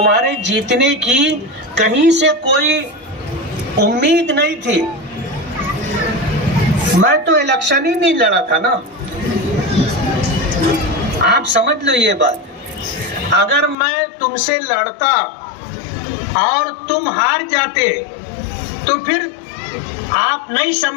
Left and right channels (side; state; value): right; drops out; at 13.8 s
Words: جیتنے کی کہیں سے کوئی امید نہیں تھی۔ میں تو الیکشن ہی نہیں لڑا تھا نا، آپ سمجھ لو یہ بات۔ اگر میں تم سے لڑتا اور تم ہار جاتے تو پھر آپ نہیں